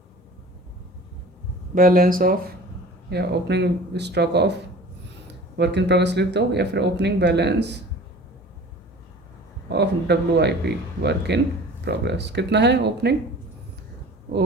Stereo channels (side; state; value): both; normal; correlation 0.43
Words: बैलेंस ऑफ, या opening stock of work in progress लिख दो, या फिर opening balance of WIP work in progress. कितना है